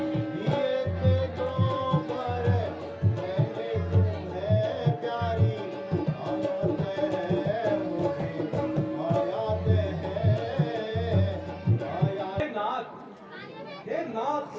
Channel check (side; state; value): both; identical; correlation 1.00